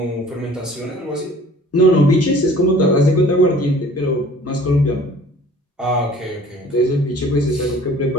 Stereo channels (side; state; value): both; normal; correlation 0.51